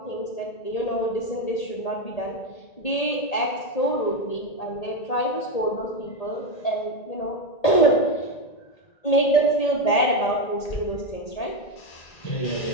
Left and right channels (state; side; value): late; right; 1.8 ms